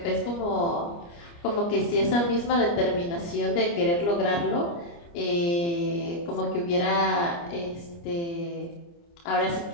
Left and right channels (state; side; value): late; right; 29 ms